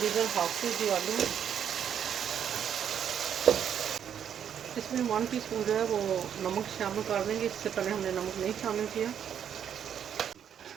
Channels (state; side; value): quieter; left; 8.8 dB